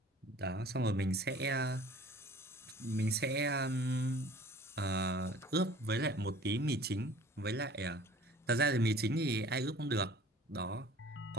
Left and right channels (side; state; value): both; normal; correlation 0.47